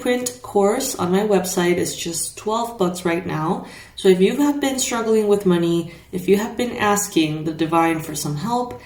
course on my website is just $12 right now. So if you have been struggling with money, if you have been asking the divine for some help,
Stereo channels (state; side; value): identical; both; correlation 1.00